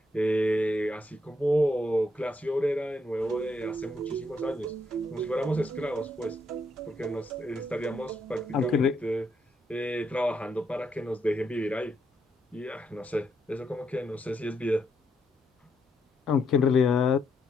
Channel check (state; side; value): normal; both; correlation 0.77